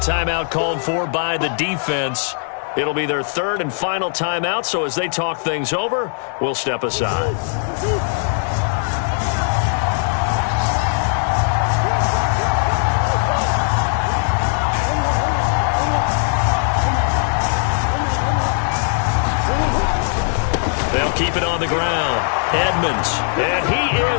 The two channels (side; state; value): right; silent; 66 dB below the other